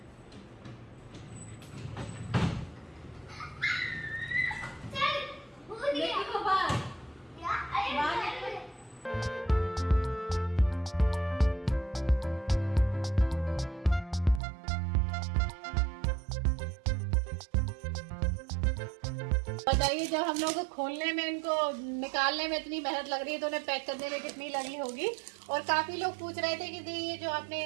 बताइए, जब हम लोग को खोलने में इनको निकालने में इतनी मेहनत लग रही है तो उन्हें पैक करने में कितनी लगी होगी। और काफ़ी लोग पूछ रहे थे कि ये जो आपने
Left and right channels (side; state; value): left; drops out; at 14.4 s